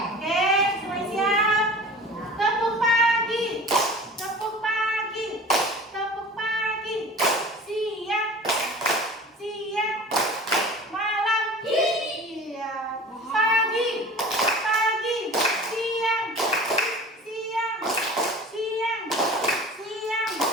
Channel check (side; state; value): both; normal; correlation 0.40